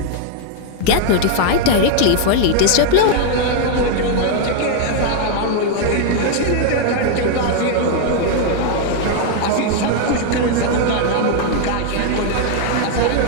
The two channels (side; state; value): both; different; correlation 0.00